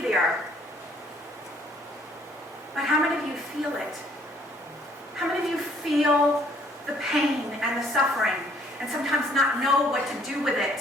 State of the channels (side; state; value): both; normal; correlation 0.61